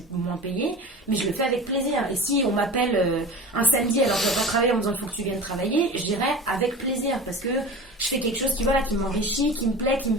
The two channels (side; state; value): both; normal; correlation 0.32